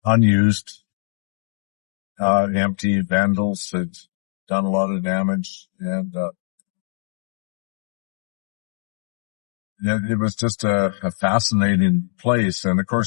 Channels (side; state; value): right; silent; digital silence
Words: unused, empty. Vandals had done a lot of damage, and it was just a fascinating place. And of